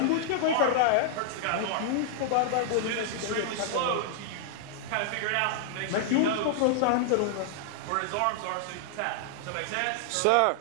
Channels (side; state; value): both; different; correlation -0.01